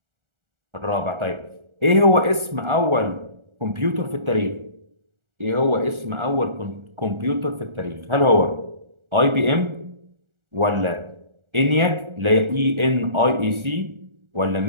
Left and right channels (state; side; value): late; left; 1.4 ms